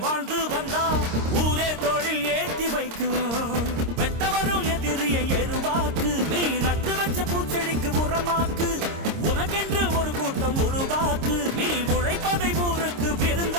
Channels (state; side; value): late; left; 26 ms